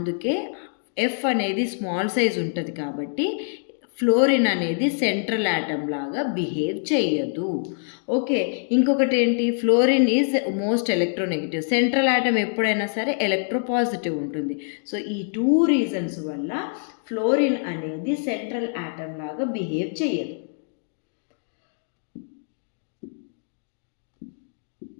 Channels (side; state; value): right; silent; digital silence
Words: F అనేది స్మాల్ సైజ్ ఉంటుంది కాబట్టి ఫ్లోరిన్ అనేది సెంట్రల్ ఆటమ్ లాగా బిహేవ్ చేయదు. ఓకే, ఇంకొకటి ఏంటి, fluorine is most electronegative. Central atom ఎప్పుడైనా సరే ఎలక్ట్రోపాజిటివ్ ఉంటుంది. సో ఈ 2 రీజన్స్ వల్ల ఫ్లోరిన్ అనేది సెంట్రల్ ఆటమ్ లాగా బిహేవ్ చేయదు.